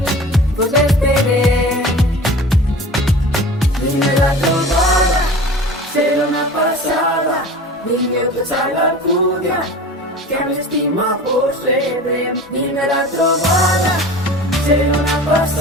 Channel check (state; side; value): normal; both; correlation 0.38